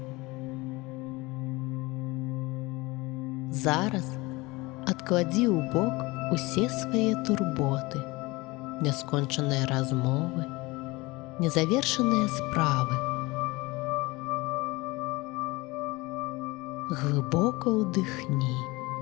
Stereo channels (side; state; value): right; quieter; 22.8 dB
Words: Зараз адкладзі ў бок усе свае турботы, няскончаныя размовы, незавершаныя справы. Глыбока ўдыхні.